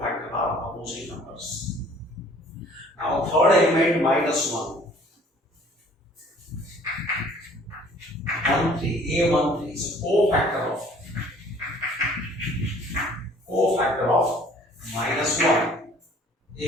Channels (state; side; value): normal; both; correlation 0.54